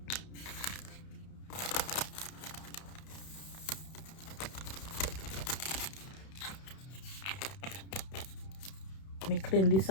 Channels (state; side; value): late; right; 31 ms